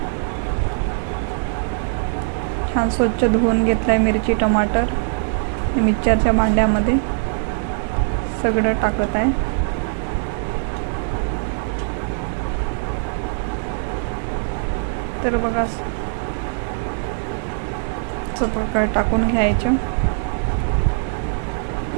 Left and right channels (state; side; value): silent; left; 56 dB below the other